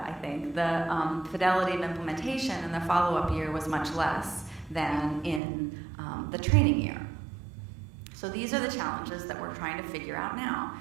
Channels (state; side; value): drops out; left; at 5.4 s